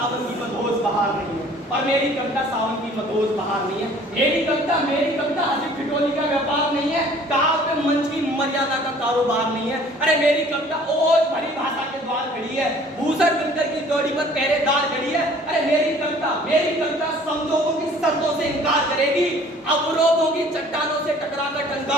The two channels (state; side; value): normal; both; correlation 0.53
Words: की मधोस बहार नहीं है, मेरी कविता हंसी ठिठोली का व्यापार नहीं है, काव्य मंच की मर्यादा का कारोबार नहीं है। अरे मेरी कविता ओज भरी भाषा के द्वार खड़ी है, भूषण बिनकर की जोड़ी पर पहरेदार खड़ी है। अरे मेरी कविता समझौतों की शर्तों से इनकार करेगी, अवरोधों की चट्टानों से टकराकर